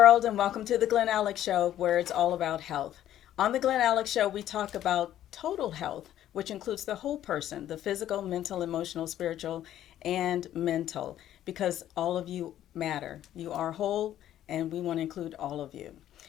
and welcome to the Glen Alex Show, where it's all about health. On the Glen Alex Show, we talk about total health, which includes the whole person, the physical, mental, emotional, spiritual, and mental, because all of you matter. You are whole, and we want to include all of you.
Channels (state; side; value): quieter; right; 12.0 dB